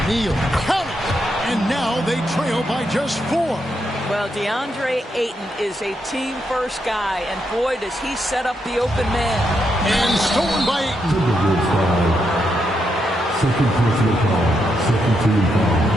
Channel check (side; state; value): both; normal; correlation 0.81